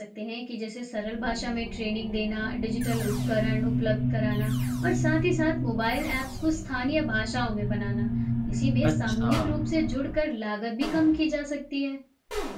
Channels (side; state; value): both; identical; correlation 1.00